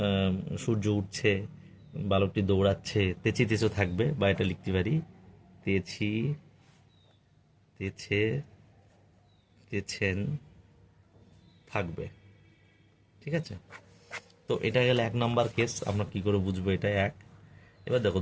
সূর্য উঠছে, বালকটি দৌড়াচ্ছে, তেচো থাকবে, বা এটা লিখতে পারি তেছেন থাকবে। ঠিক ঠিক আছে? তো এটা গেলে 1 নাম্বার কেস, আমরা কি করে বুঝবো এটা এক। এবার দেখো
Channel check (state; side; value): identical; both; correlation 1.00